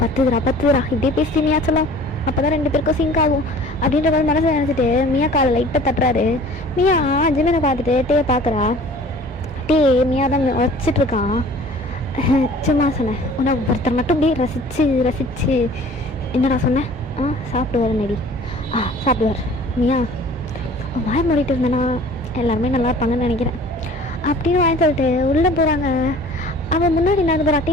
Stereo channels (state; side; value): normal; both; correlation 0.48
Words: பத்துதுரா இப்படியே பேசி மியா சொல்லும். அப்போ தான் 2 பேருக்கும் சிங்க் ஆகும் அப்படின்ற மாதிரி மனசை நினச்சிட்டு மியா காலை லைட்டாக தட்டுறாரு. மியா ஜிமினை பார்த்துட்டு பார்க்குறா. மியா தான் வச்சிட்ருக்கான். சும்மா சொன்னேன், உன்னை ஒருத்தர் மட்டும் அப்படியே ரசிச்சு என்னடா சொன்னேன்? சாப்பிடுவார் நடி. சாப்பிடுவார். மியா வாய் மூடிட்டு இருந்தேன்னா எல்லாருமே நல்லா இருப்பாங்கன்னு நினைக்கிறேன் அப்படின்னு வாங்கி சொல்லிட்டு உள்ளே போகிறாங்க. அவன் முன்னாடி நடந்து போகிற